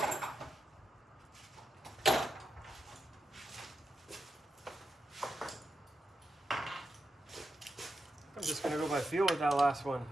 I'm just gonna go by feel with that last one.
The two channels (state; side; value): normal; both; correlation 0.86